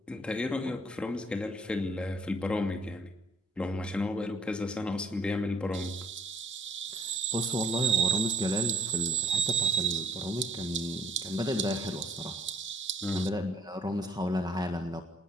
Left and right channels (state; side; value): normal; both; correlation 0.60